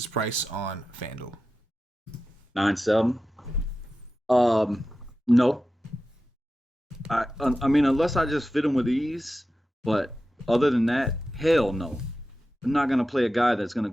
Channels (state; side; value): normal; both; correlation 0.92